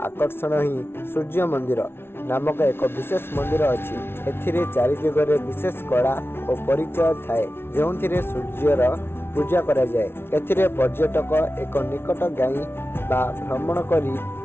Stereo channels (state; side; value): late; right; 0.12 ms